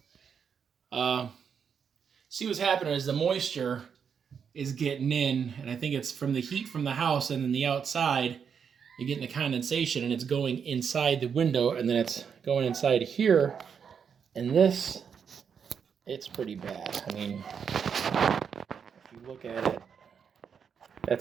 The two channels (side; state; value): left; quieter; 6.9 dB